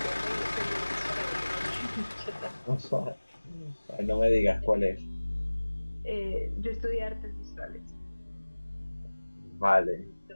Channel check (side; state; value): both; inverted; correlation -1.00